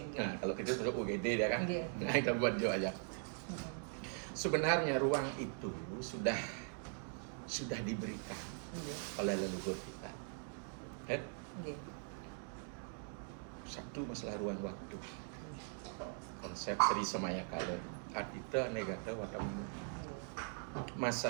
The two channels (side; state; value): left; silent; 50 dB below the other